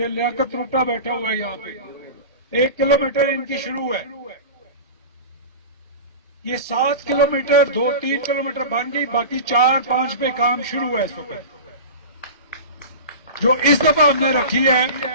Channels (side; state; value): both; inverted; correlation -0.31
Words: लियाकत रोटा बैठा हुआ है यहाँ पे, 1 किलोमीटर इनकी शुरू है। ये 7 किलोमीटर 2-3 किलोमीटर बन गई, बाकी 4-5 पे काम शुरू है इस वक्त। जो इस दफा हमने रखी है